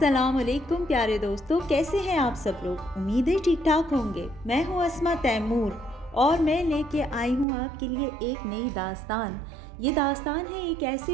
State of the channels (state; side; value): drops out; left; at 7.5 s